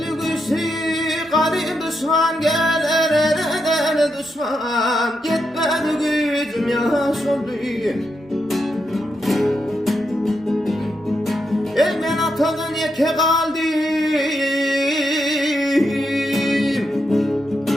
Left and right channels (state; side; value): normal; both; correlation 0.83